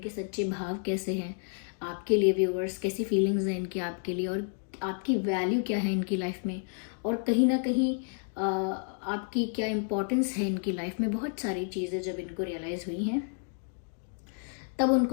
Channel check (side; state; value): right; silent; 57 dB below the other